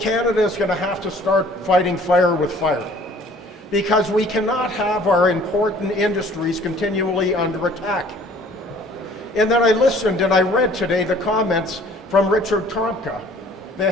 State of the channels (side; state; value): both; normal; correlation 0.54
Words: is going to have to start fighting fire with fire, because we cannot have our important industries continually under attack. And then I listened and I read today the comments from Richard Trumka, the